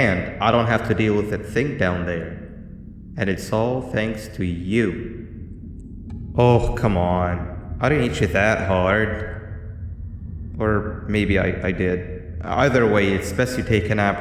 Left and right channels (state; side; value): identical; both; correlation 1.00